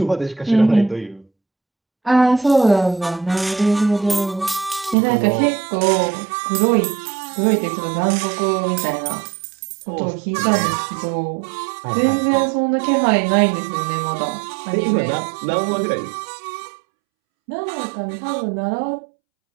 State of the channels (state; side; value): drops out; left; at 5.0 s